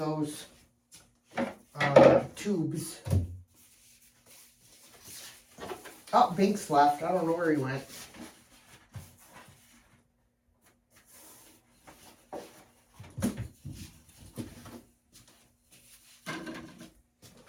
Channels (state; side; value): identical; both; correlation 1.00